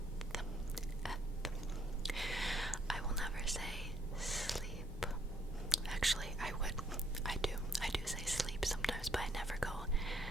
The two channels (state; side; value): normal; both; correlation 0.70